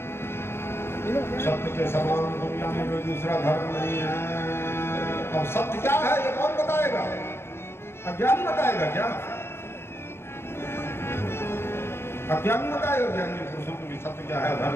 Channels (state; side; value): late; right; 0.12 ms